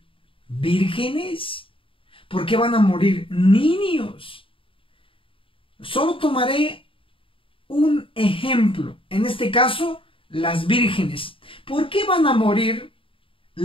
vírgenes? ¿Por qué van a morir niños? Solo tomaré un ejemplo. En este caso, las vírgenes. ¿Por qué van a morir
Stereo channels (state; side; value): late; right; 0.26 ms